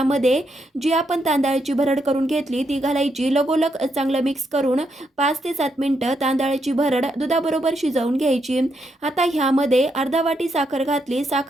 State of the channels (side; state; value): both; normal; correlation 0.79